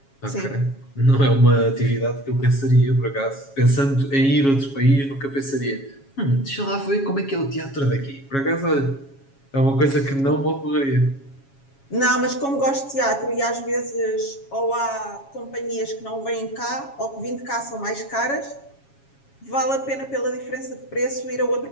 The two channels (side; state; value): right; late; 7.3 ms